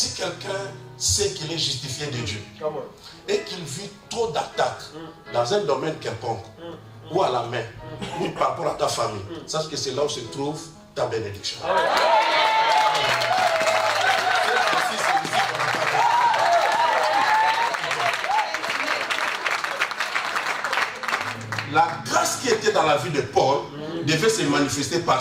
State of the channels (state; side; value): identical; both; correlation 1.00